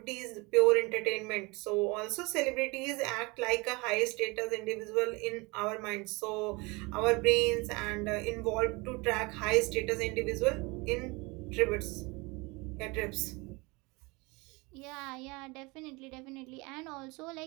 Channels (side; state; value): left; quieter; 25.9 dB